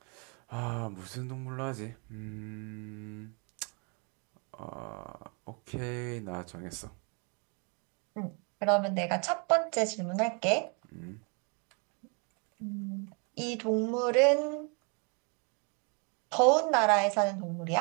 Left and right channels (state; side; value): quieter; left; 35.5 dB